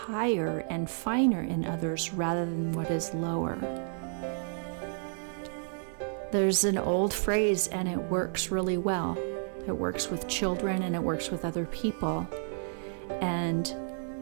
and finer in others rather than what is lower. There's an old phrase, and it works really well. It works with children and it works with other people. And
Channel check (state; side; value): silent; left; digital silence